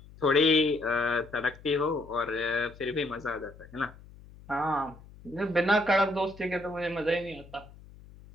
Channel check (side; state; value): left; noise; hum, 21 dB below the sound